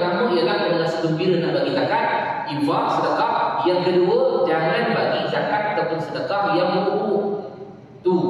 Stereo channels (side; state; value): both; identical; correlation 1.00